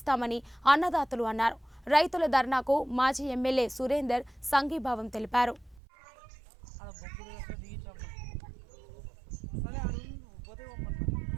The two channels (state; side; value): drops out; left; at 5.8 s